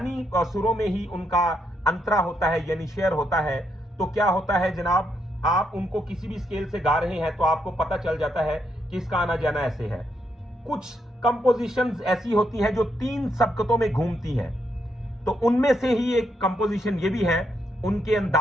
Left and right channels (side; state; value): both; normal; correlation 0.78